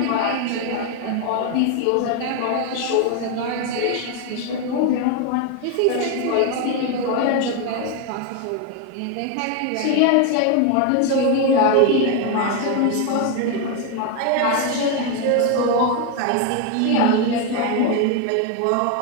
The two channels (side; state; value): both; different; correlation 0.01